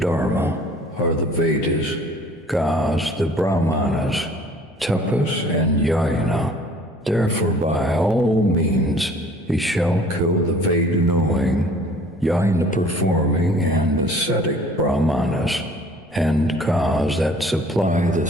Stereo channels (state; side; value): normal; both; correlation 0.52